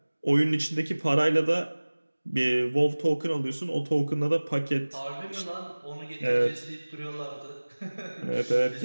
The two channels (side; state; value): both; inverted; correlation -1.00